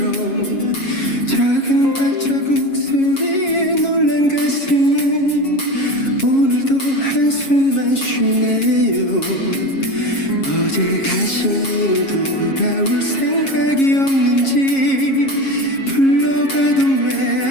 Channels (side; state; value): right; late; 7.4 ms